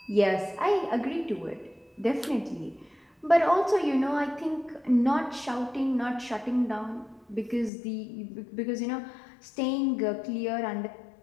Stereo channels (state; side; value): drops out; right; at 7.7 s